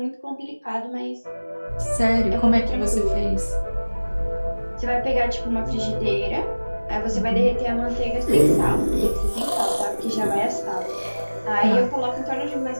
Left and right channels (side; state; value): both; inverted; correlation -1.00